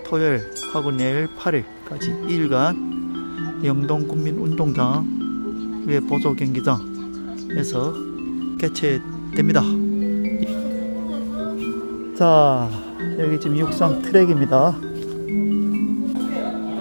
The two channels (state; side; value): inverted; both; correlation -1.00